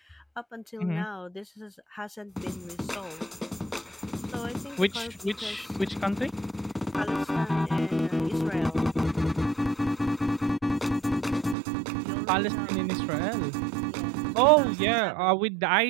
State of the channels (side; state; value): left; drops out; at 11.6 s